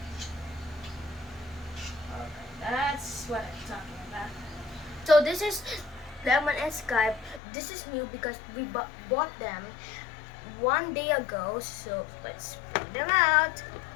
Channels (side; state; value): right; drops out; at 7.4 s